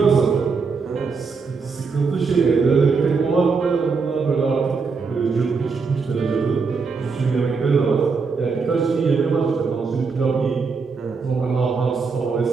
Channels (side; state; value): left; quieter; 4.9 dB